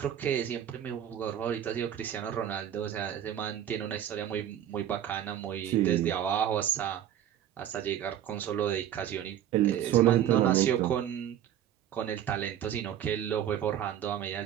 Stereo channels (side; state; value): left; quieter; 10.7 dB